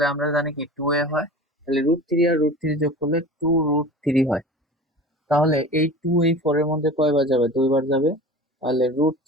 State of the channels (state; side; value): normal; both; correlation 0.37